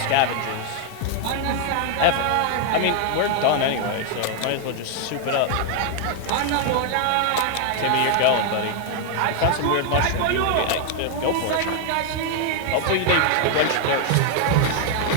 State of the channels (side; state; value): both; different; correlation 0.00